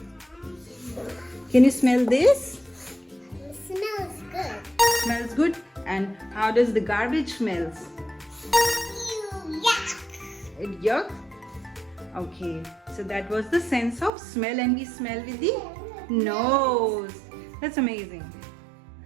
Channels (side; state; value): left; drops out; at 14.1 s